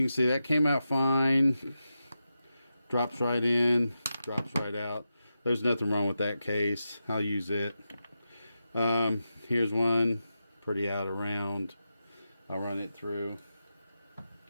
can see that came out fine. Drops right in, drops right out. There's nothing wrong with that case. I'll use it. Here's one, pretty out of round. I'll run it through.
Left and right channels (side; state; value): both; inverted; correlation -0.90